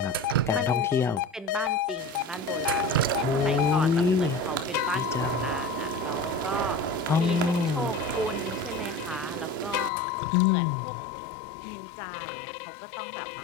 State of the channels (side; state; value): right; drops out; at 9.9 s